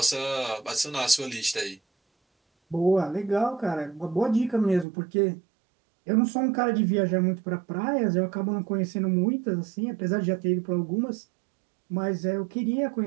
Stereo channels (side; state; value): left; drops out; at 4.9 s